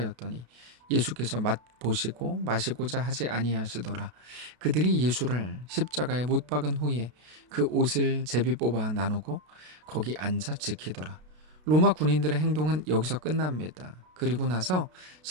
예수께서 맛보시고 마시고자 하지 아니하시더라. 그들이 예수를 십자가에 못 박은 후에 그 옷을 제비 뽑아 나누고 거기 앉아 지키더라. 로마 군인들의 행동은 여기서 끝납니다. 그리고 나서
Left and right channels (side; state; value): left; late; 33 ms